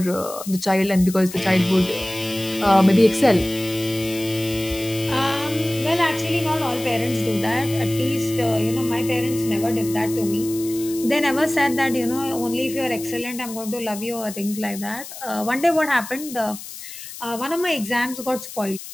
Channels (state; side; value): noise; left; hiss, 12 dB below the sound